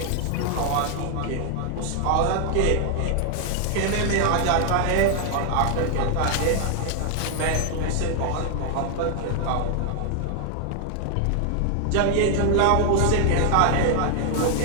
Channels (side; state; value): both; different; correlation 0.00